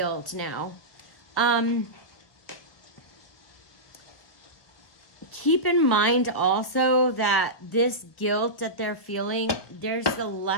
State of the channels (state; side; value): late; right; 1.2 ms